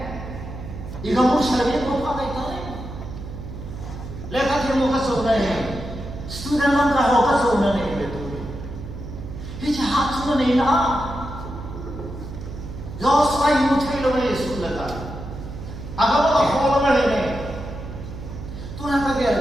Ikaw mo survey mo pa kayo tayo. Lekat yung mo kasuna student lang ka ho kasuna Hicha hat suna na Diyos ay mutuilo na Yesu laka. Aga mo ka hola na Tunang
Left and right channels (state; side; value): noise; right; hum, 10 dB below the sound